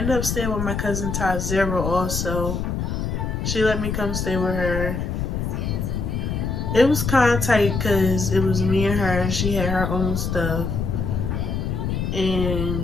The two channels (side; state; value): left; noise; rumble, 2 dB below the sound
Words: up staying with my cousin Ty Zero also. She let me come stay with her. It was kind of tight because it was me and her. She had her own stuff.